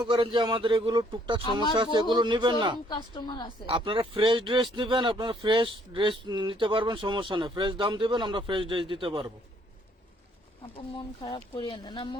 করেন যে আমাদের এগুলো টুকটাক সমস্যা আছে, এগুলো নিবেন না, কাস্টমার আছে। আপনারা ফ্রেশ ড্রেস নিবেন, আপনারা ফ্রেশ ড্রেস নিতে পারবেন, সমস্যা নেই। ফ্রেশ দাম দিবেন, আমরা ফ্রেশ ড্রেস দিতে পারবো। আপু মন খারাপ করিয়েন না। না,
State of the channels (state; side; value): normal; both; correlation 0.65